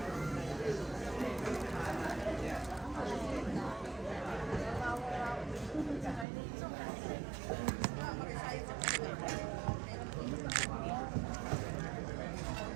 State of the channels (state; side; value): drops out; left; at 6.2 s